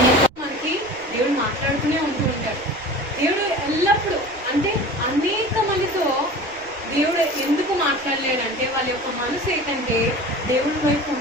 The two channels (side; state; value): right; noise; rumble, 24 dB below the sound